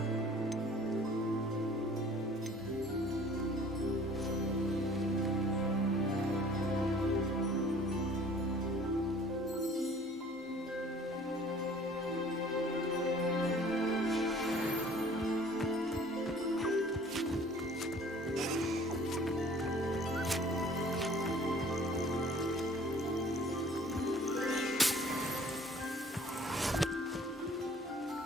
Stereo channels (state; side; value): normal; both; correlation 0.51